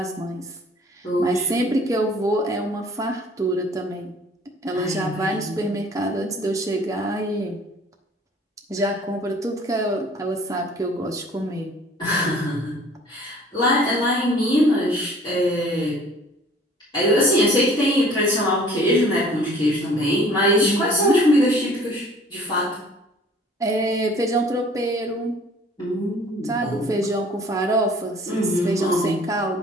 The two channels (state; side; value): normal; both; correlation 0.52